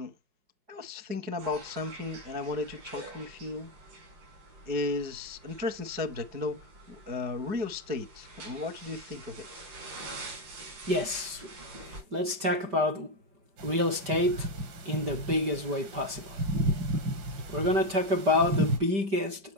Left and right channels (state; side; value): late; left; 5.1 ms